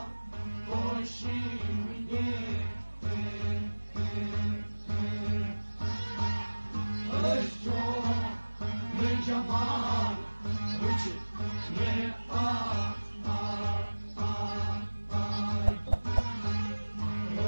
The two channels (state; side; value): inverted; both; correlation -1.00